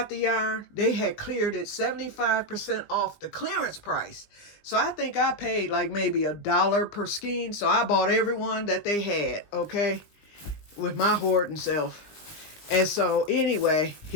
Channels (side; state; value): right; late; 19 ms